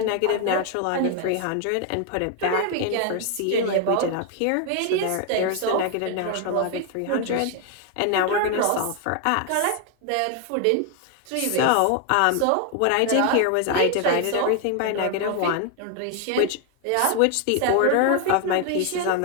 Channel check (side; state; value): both; different; correlation 0.00